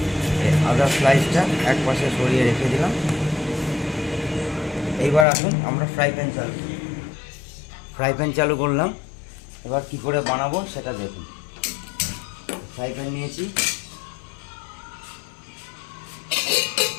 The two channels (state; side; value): drops out; right; at 5.2 s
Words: আদার স্লাইসটা এক পাশে সরিয়ে রেখে দিলাম। এইবার আসুন আমরা ফ্রাই প্যান চালু করলাম। এবার কি করে বানাবো সেটা দেখুন। ফ্রাই প্যান নিয়েছি,